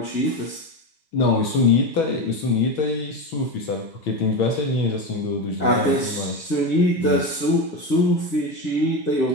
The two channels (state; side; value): late; right; 1.6 ms